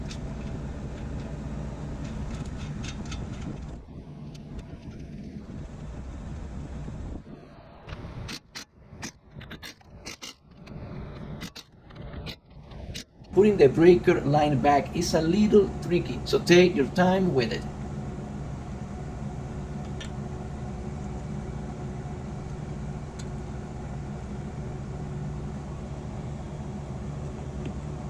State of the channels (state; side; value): identical; both; correlation 1.00